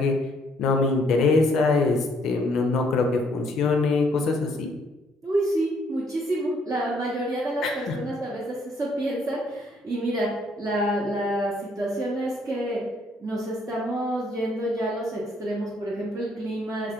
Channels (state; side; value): normal; both; correlation 0.67